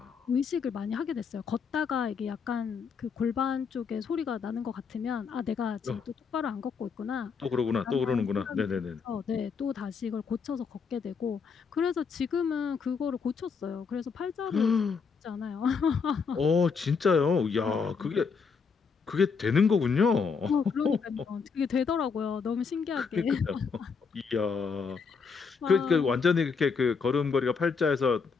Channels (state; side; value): quieter; right; 5.5 dB